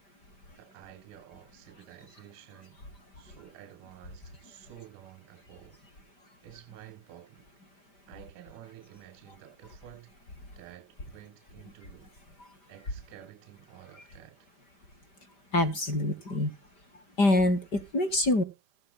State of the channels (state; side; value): late; right; 5.1 ms